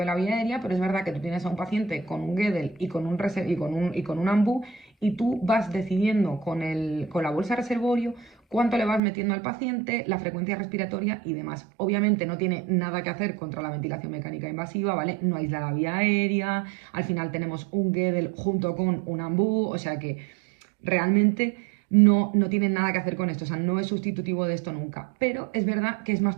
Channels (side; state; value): left; drops out; at 9.0 s